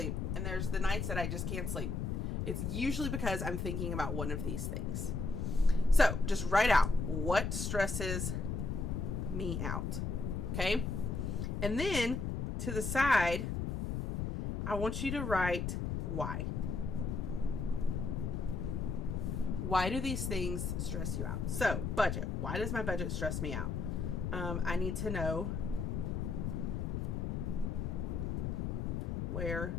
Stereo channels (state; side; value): noise; left; rumble, 1 dB below the sound